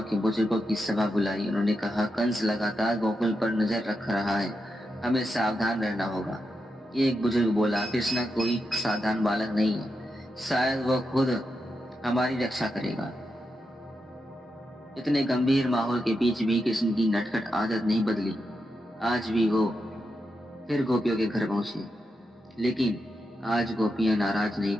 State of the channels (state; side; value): normal; both; correlation 0.86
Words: के बुजुर्गों की सभा बुलाई। उन्होंने कहा, कंस लगातार गोकुल पर नजर रख रहा है, हमें सावधान रहना होगा। एक बुजुर्ग बोला, कृष्णा कोई साधारण बालक नहीं है, शायद वह खुद हमारी रक्षा करेगा। इतने गंभीर माहौल के बीच भी कृष्ण की नटखट आदत नहीं बदली। आज भी वो फिर गोपियों के घर पहुंचे, लेकिन आज गोपियां नाराज नहीं